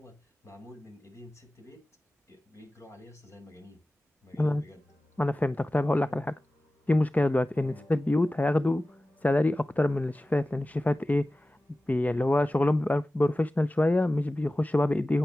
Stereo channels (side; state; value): both; normal; correlation 0.96